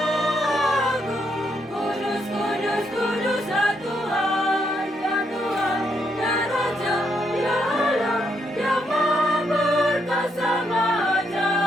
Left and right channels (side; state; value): both; normal; correlation 0.77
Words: Agung. Kudus, kudus, kuduslah Tuhan, ya Tuhan, ya Raja, ya Allah, yang Maha Perkasa, Maha